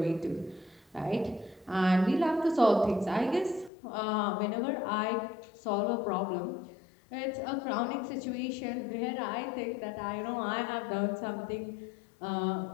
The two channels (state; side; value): drops out; right; at 3.7 s